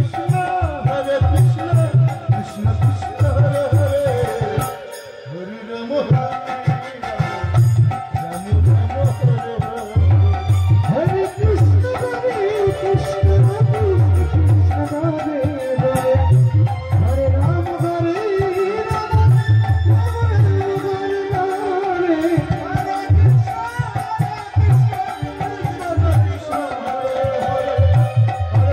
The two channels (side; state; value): both; identical; correlation 1.00